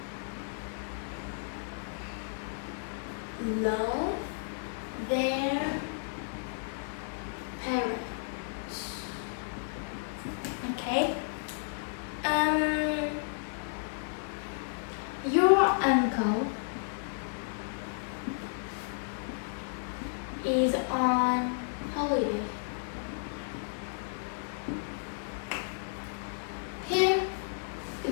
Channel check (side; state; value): right; silent; 56 dB below the other